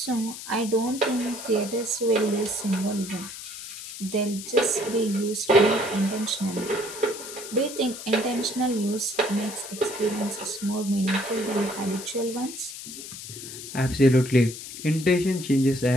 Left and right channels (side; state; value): left; noise; hiss, 11 dB below the sound